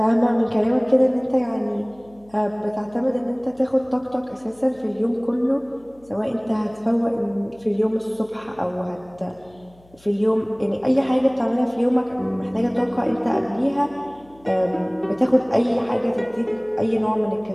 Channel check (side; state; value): left; noise; hum, 28 dB below the sound